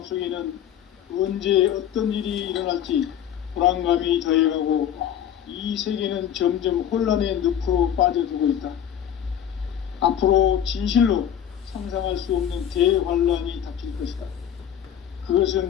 언제 어떤 일이 일어날지 불안감이 더해가고 이 세계는 점점 혼란의 늪으로 빠져들고 있다. 앞으로 진실로 상상할 수 없는 대환란이 닥칠 것이다.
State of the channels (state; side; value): quieter; right; 9.8 dB